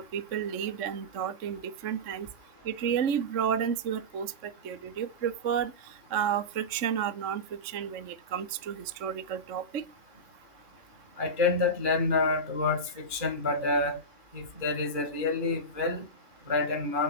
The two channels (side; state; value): left; late; 3.5 ms